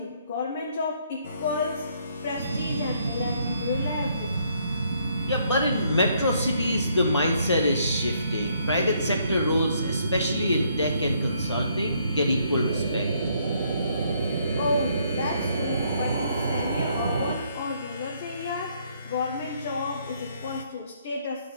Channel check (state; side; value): inverted; both; correlation -0.69